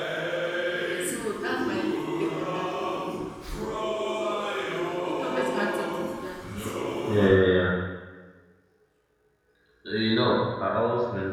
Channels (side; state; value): both; identical; correlation 1.00